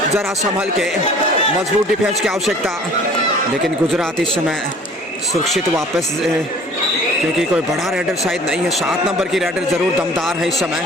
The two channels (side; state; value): both; normal; correlation 0.50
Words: ज़रा संभल के मजबूत डिफेंस की आवश्यकता। लेकिन गुजरात इस समय सुरक्षित वापस, क्योंकि कोई बड़ा रेडर शायद नहीं है। 7 नंबर की रेडर ज़रूर दमदार है इस समय,